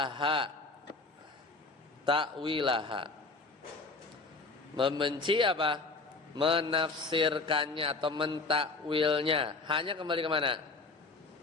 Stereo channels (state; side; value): quieter; right; 3.7 dB